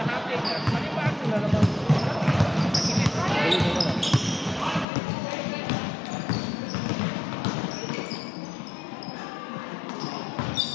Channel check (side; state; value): right; drops out; at 4.9 s